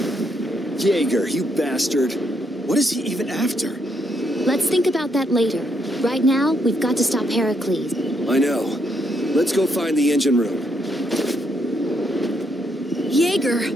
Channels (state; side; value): normal; both; correlation 0.75